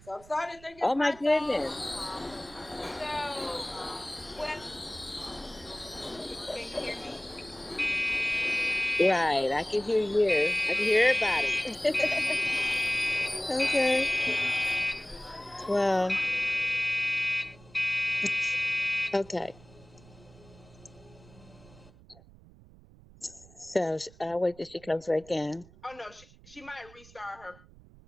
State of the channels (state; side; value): noise; right; rumble, 23 dB below the sound